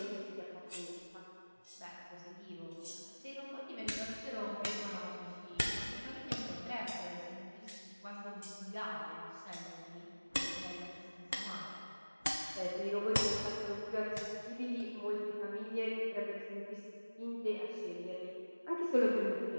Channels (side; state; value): both; inverted; correlation -1.00